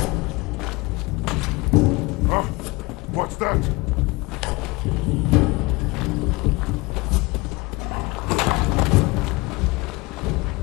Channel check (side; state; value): right; quieter; 24.0 dB